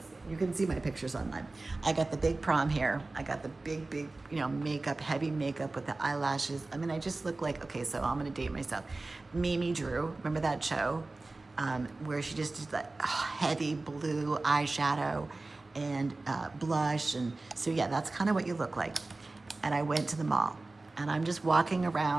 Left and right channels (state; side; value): quieter; left; 3.2 dB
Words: You can see my pictures online. I got the big prom hair. I got the big, you know, makeup, heavy makeup with the eyelashes. I mean, I just look like, okay, so I'm gonna date myself. Mimi Drew, remember that show? Where she just did that heavy blue eyeshadow and blush. And so yeah, that's kind of what you look like. And I went to the mall, and I'm just walking